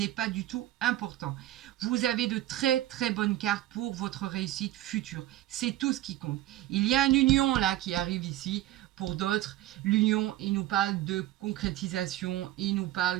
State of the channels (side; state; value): left; quieter; 15.0 dB